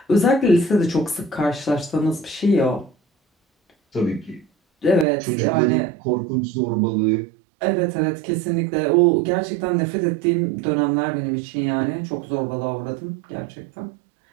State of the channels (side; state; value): left; drops out; at 5.1 s